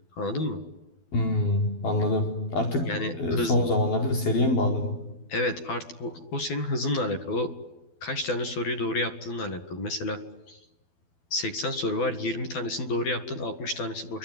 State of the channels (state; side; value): late; right; 12 ms